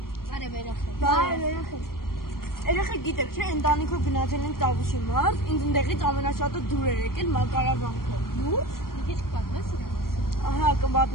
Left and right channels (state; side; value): late; right; 0.93 ms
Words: Բարև երեխեք։ Բարև երեխեք։ Երեխեք գիտեք, չէ, ընտանիքով գնացել ենք Տավուշի մարզ, ինձ ընդեղից ամենաշատը դուր էր եկել Մակարավանքը։ Դուր։ Մի քիչ կպատմես իրան։ Ահա,